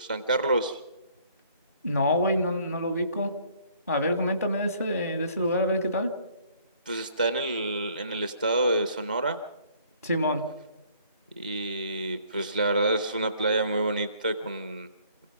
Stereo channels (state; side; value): inverted; both; correlation -0.60